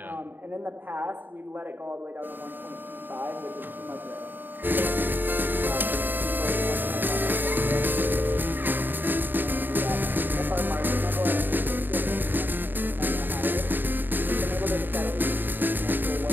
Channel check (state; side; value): late; left; 0.092 ms